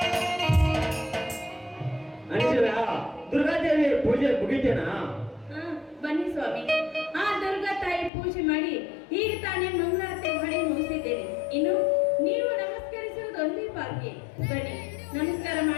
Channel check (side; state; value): right; drops out; at 8.1 s